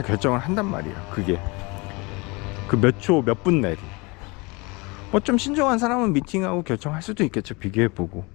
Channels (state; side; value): quieter; right; 26.8 dB